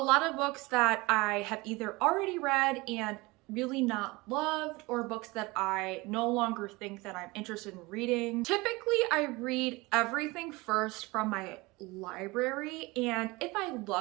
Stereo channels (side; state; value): left; quieter; 23.2 dB